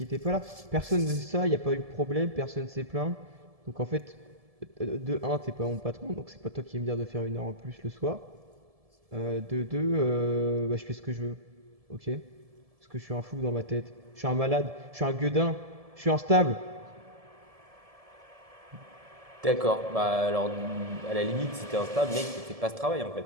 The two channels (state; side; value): late; left; 1.7 ms